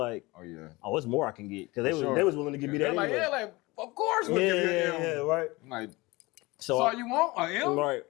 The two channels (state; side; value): quieter; right; 22.5 dB